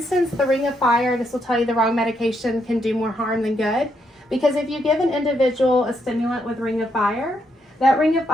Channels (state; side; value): normal; both; correlation 0.78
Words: the Ring of Fire, this will tell you the wrong medication can do more harm than good. Because if you give an individual a stimulant with Ring of Fire, that Ring of